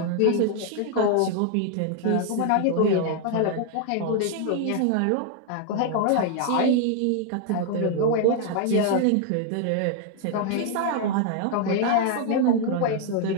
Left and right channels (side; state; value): both; different; correlation 0.00